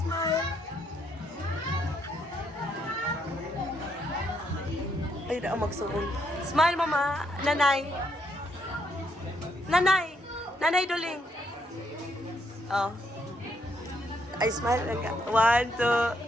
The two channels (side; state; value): both; normal; correlation 0.74